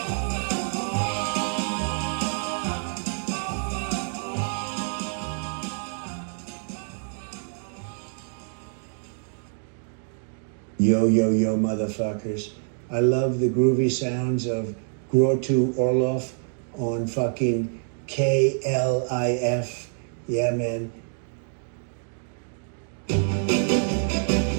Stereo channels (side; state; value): left; silent; 59 dB below the other